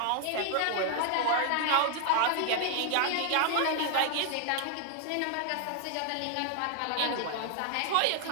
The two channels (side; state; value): both; different; correlation 0.00